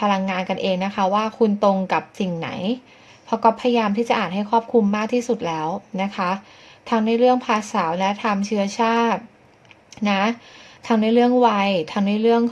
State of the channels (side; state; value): both; identical; correlation 1.00